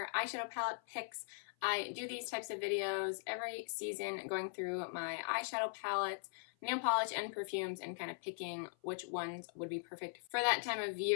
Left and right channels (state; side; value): silent; right; 51 dB below the other